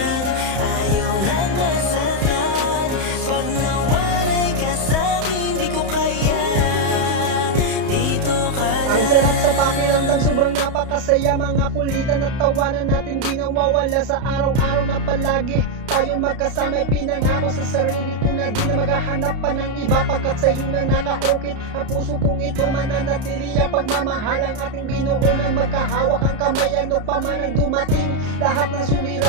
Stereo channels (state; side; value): late; left; 31 ms